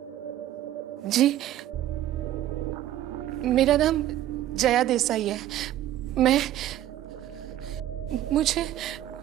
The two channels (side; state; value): left; quieter; 13.0 dB